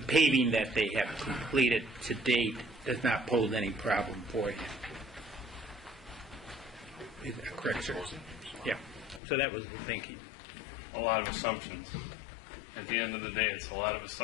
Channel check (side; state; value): right; drops out; at 9.2 s